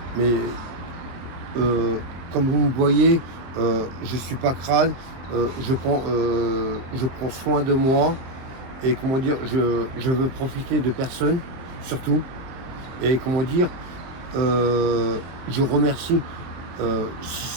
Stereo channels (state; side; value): late; left; 23 ms